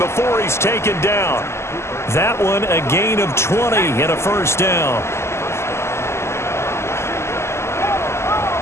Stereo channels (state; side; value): late; right; 0.13 ms